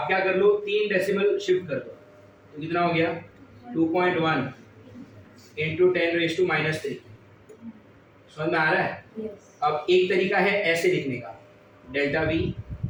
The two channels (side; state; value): both; identical; correlation 1.00